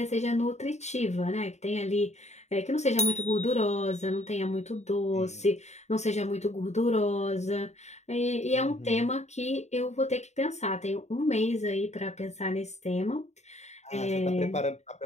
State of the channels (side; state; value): right; late; 0.33 ms